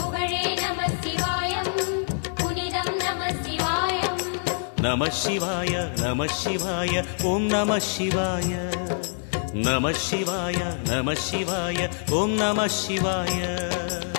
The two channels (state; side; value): silent; right; digital silence